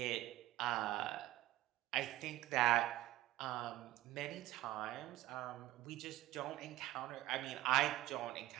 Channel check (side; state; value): left; quieter; 15.7 dB